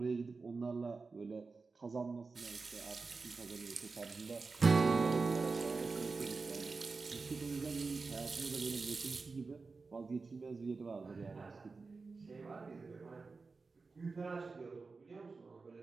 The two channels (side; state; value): left; quieter; 4.2 dB